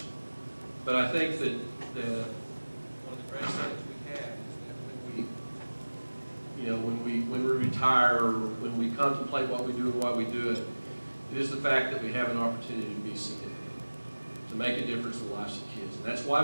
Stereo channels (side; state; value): both; inverted; correlation -1.00